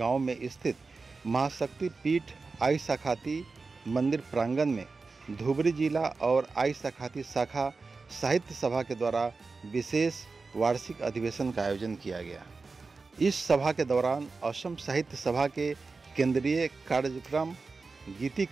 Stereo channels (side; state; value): left; quieter; 4.1 dB